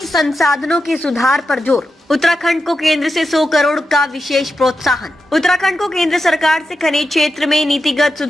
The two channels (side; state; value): both; normal; correlation 0.89